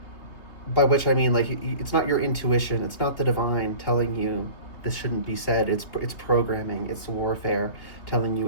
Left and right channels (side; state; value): right; late; 3.6 ms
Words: by which I mean, like, it's not your intuition. It's not the divine telling you this shouldn't be said. It's programming. It's warfare telling